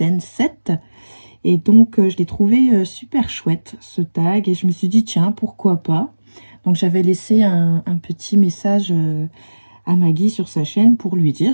7. Et donc je l'ai trouvé super chouette ce tag et je me suis dit tiens pourquoi pas. Donc j'avais laissé un petit message à Maggie sur sa chaîne pour lui dire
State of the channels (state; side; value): inverted; both; correlation -1.00